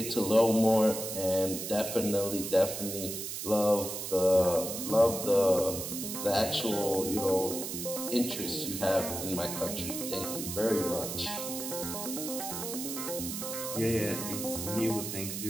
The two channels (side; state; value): right; noise; hiss, 6 dB below the sound